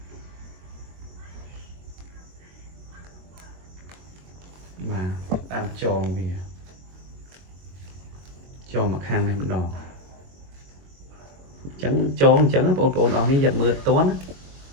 បាទដើមចងវាចងមកខាងនេះម្ដងអញ្ចឹងចងអញ្ចឹងបងប្អូនអស់នេះយកមើលតន់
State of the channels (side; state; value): left; late; 22 ms